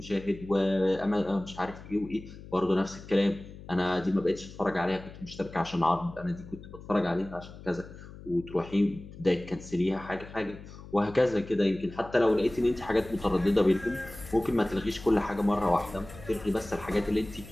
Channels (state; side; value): noise; left; hum, 16 dB below the sound